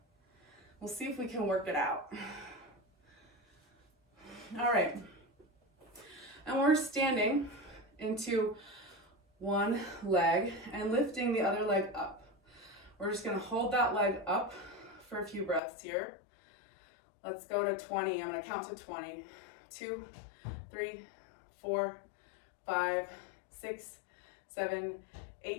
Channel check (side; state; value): right; drops out; at 15.6 s